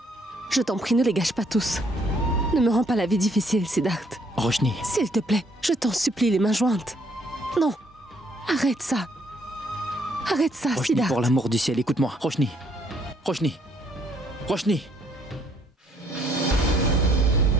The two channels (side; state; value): both; normal; correlation 0.67